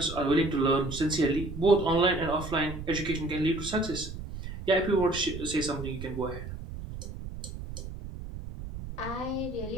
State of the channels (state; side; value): noise; right; rumble, 9 dB below the sound